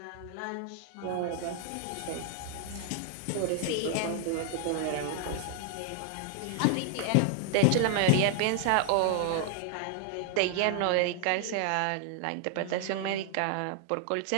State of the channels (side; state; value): both; different; correlation 0.00